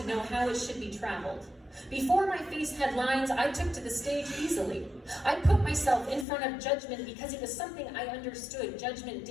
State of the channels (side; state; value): right; drops out; at 6.2 s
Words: know how it should be traveled. Before my face had lines, I took to the stage easily. I put myself in front of judgment because it was something I understood. Judgment